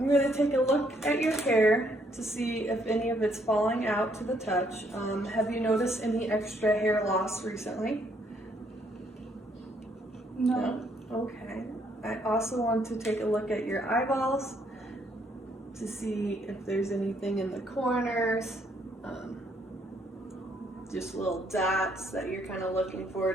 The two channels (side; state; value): both; normal; correlation 0.69